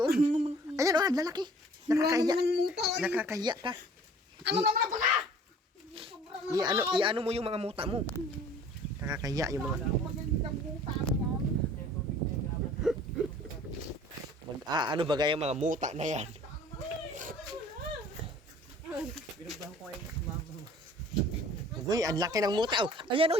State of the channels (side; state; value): both; normal; correlation 0.50